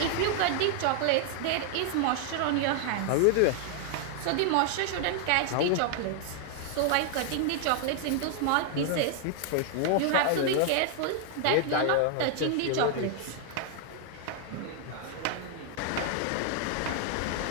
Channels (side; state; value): both; different; correlation 0.00